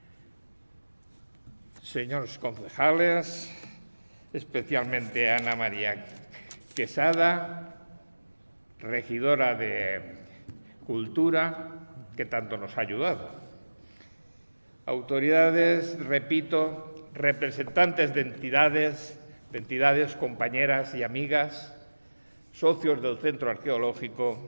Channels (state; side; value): inverted; both; correlation -1.00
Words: señores concejales, especialmente Ana María Quesada, regidora de Cultura, que tanto nos ha ayudado. Autoridades, repito, representantes de entidades, compañeras y amigas, socios del Centro